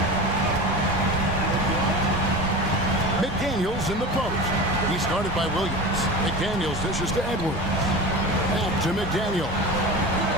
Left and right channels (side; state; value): both; normal; correlation 0.30